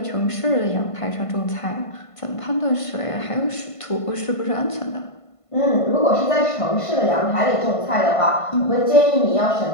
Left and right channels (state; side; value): late; right; 1.5 ms